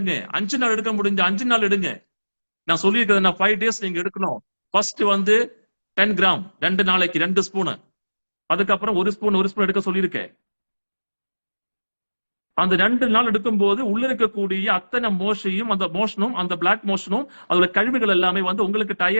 5 நாள் எடுக்க முடிஞ்ச 5 நாள் எடுங்க. நான் சொல்லியிருக்கிறது நான் 5 டேஸ் நீங்க எடுக்கணும். ஃபர்ஸ்ட் வந்து 10 கிராம் 2 நாளைக்கு 2 ஸ்பூன், அதுக்கப்புறம் ஒரு ஸ்பூன் எடுக்க சொல்லியிருக்கேன். அந்த 2 நாள் எடுக்கும் போது உள்ள இருக்கக்கூடிய அத்தனை மோஷனும் அந்த பிளாக் மோஷனும் அதோட கழிவுகள் எல்லாமே வந்து உங்களுக்கு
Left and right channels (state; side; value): inverted; both; correlation -1.00